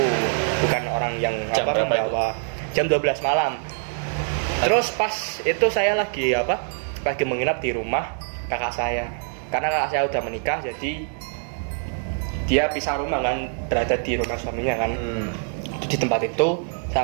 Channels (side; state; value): left; silent; 63 dB below the other